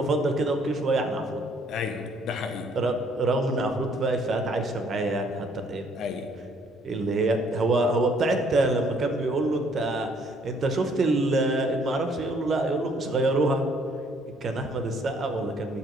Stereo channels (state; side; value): normal; both; correlation 0.64